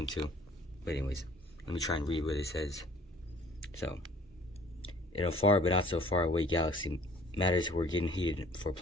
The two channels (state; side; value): normal; both; correlation 0.53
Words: too. But anyways, let me try and read what it says. So, in a far but not so far away galaxy, matters were getting heated for